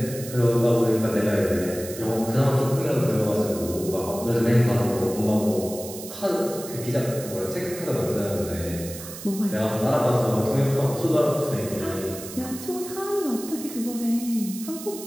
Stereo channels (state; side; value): noise; right; hiss, 12 dB below the sound